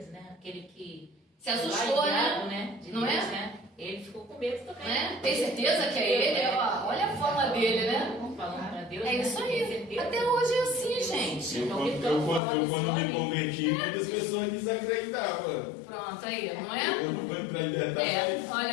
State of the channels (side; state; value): right; drops out; at 12.4 s